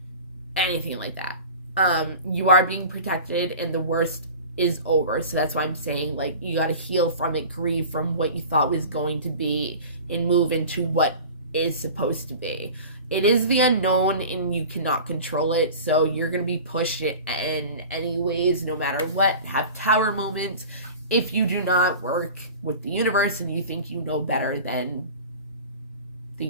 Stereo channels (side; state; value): both; inverted; correlation -0.38